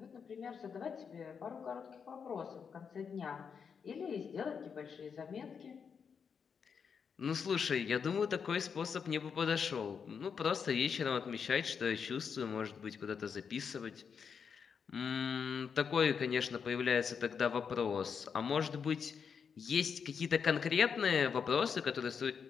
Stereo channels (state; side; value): quieter; right; 6.5 dB